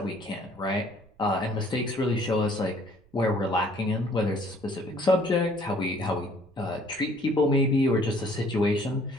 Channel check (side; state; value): right; noise; rumble, 29 dB below the sound